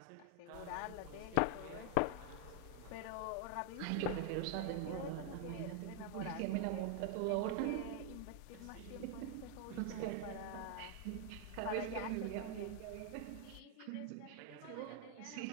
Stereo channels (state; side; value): different; both; correlation 0.00